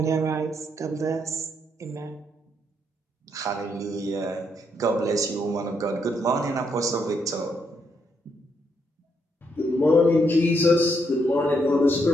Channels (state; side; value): normal; both; correlation 0.76